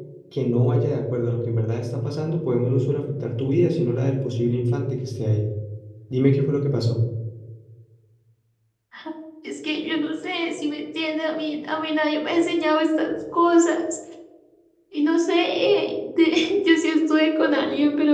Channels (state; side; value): identical; both; correlation 1.00